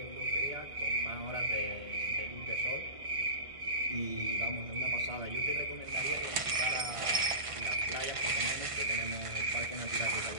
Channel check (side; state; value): left; late; 1.5 ms